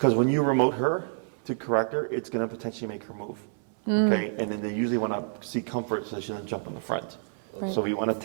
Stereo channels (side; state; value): left; silent; 58 dB below the other